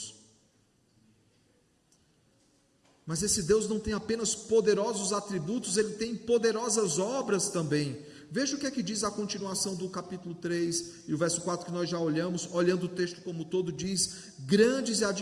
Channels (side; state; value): both; identical; correlation 1.00